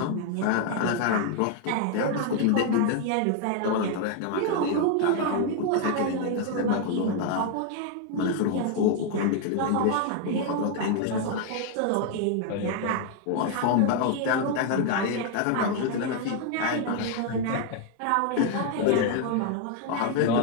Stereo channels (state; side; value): different; both; correlation 0.00